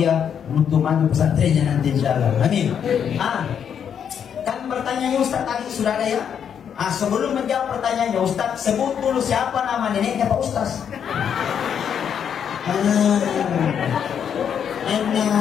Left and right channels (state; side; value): quieter; right; 8.1 dB